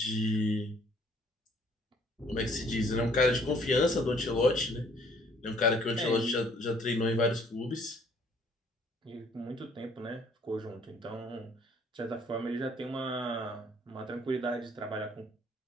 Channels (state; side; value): normal; both; correlation 0.60